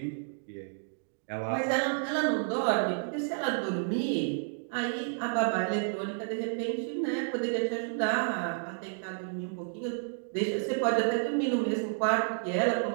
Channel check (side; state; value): left; silent; digital silence